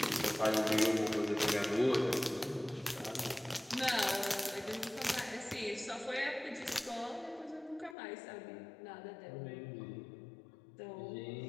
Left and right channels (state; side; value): drops out; right; at 8.0 s